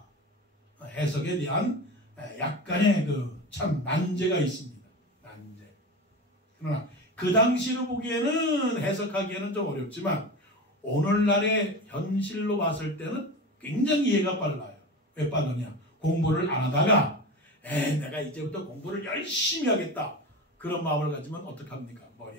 해석에 대한 약간의 참 난제가 있습니다. 난제. 그러나 그 당시로 보기에는 해석하기에는 좀 어렵지만 오늘날의 현실로 봤을 때는 굉장히 이해가 빨라요. 왜 빠르냐? 공부를 안 하다가 내가 이제부터 공부를 열심히 하겠다. 그런 마음을 가지면 어떡합니까?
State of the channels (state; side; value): normal; both; correlation 0.28